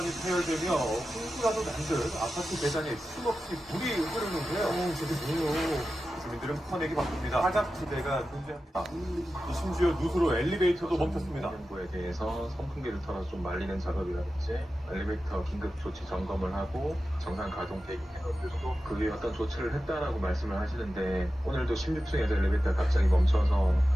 파열되며 홍수라도 난 듯 아파트 계단에 쉼없이 물이 흐르는데요. 저게 뭐예요? 주민들은 퍼내기 바쁩니다. 사각지대가 존재합니다. 심지어 누수로 엘리베이터도 멈췄습니다. 정부에 대해서 선풍기를 털어서 좀 말리는 작업이라든지 엘리베이터 긴급 조치 점검을 하고 정상 가동 대기해놓고 그 위에 어떤 조치를 했다라고 말씀을 하시는데 오늘도 16층에서 엘리베이터가 갑자기 멈춰서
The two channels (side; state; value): both; normal; correlation 0.93